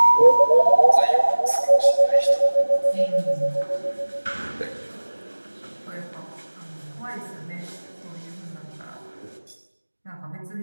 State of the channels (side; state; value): both; inverted; correlation -1.00